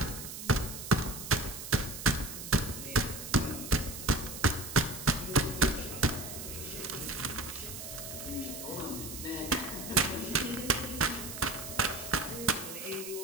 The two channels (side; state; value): right; noise; hiss, 9 dB below the sound